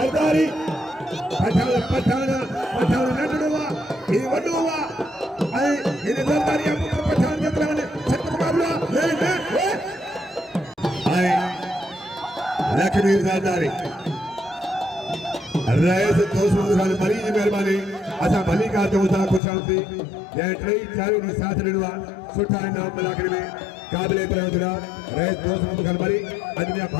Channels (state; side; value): drops out; right; at 19.4 s